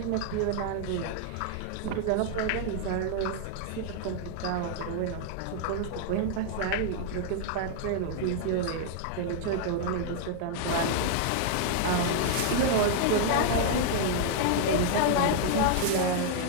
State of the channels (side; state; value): both; different; correlation 0.00